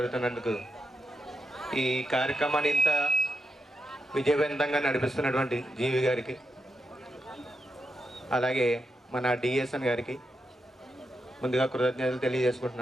ఈ కార్యక్రమాన్ని ఇంత విజయవంతంగా నడిపిస్తున్నటువంటి జీవి గారికి, అలాగే మన డిఎస్ఎన్ గారికి ముందుగా కృతజ్ఞతలు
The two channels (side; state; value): both; normal; correlation 0.86